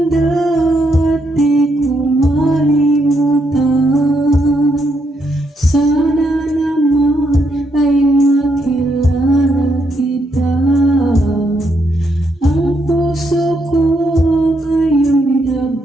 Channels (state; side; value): normal; both; correlation 0.77